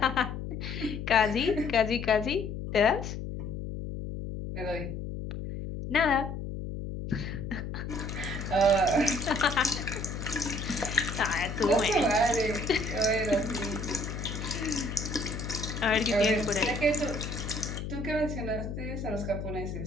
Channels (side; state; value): left; noise; hum, 6 dB below the sound